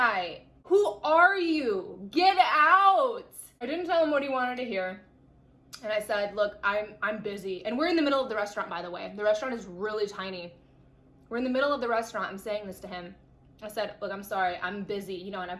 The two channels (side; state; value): both; identical; correlation 1.00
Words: who are you? Get out! I didn't tell him what he wanted to hear. And I said, look, I'm busy. And we're in the middle of the restaurant, by the way. The restaurant is really tiny. We're in the middle of the restaurant. I'm saying this to him. I said, look, I'm sorry, I'm busy, you know, and I